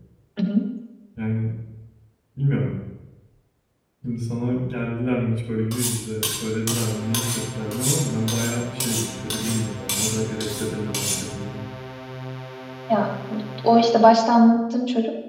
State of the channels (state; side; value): identical; both; correlation 1.00